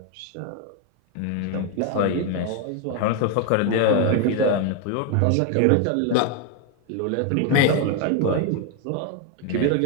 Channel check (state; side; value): different; both; correlation 0.01